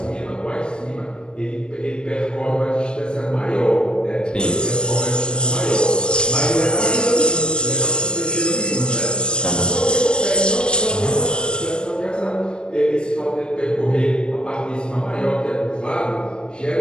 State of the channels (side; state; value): right; late; 0.052 ms